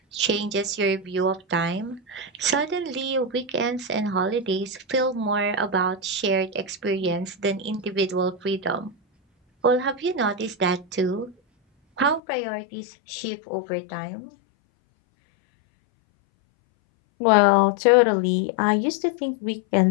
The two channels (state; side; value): drops out; right; at 12.2 s